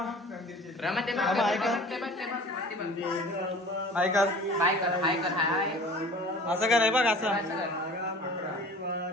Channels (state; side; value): normal; both; correlation 0.43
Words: असं कर बघ असं